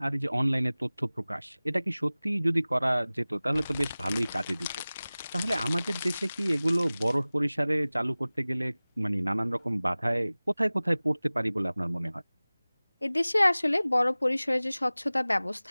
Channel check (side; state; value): both; inverted; correlation -0.99